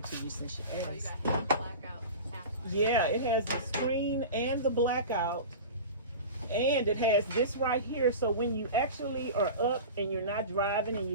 to you since you asked. Oh, you got half blackout, half. Yeah, it has the screen and the blackout. And it has this right here, so when you actually are up and you're not driving and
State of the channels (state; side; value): inverted; both; correlation -0.31